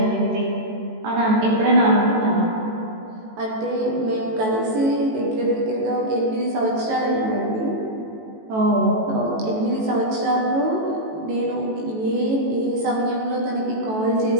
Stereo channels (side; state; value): left; late; 18 ms